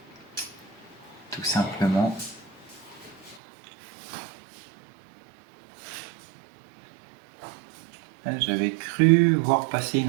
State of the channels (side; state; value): left; drops out; at 3.4 s